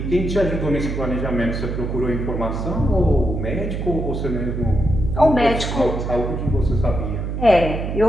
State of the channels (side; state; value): right; noise; hum, 3 dB below the sound